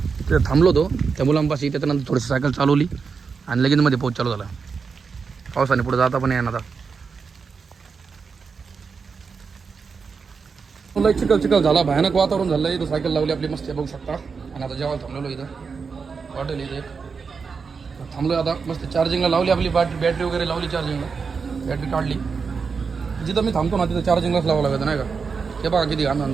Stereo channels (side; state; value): left; quieter; 5.4 dB